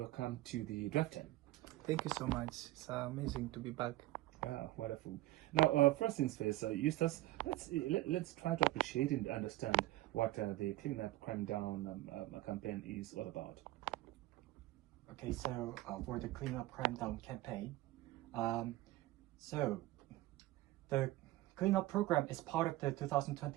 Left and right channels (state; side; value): quieter; left; 17.3 dB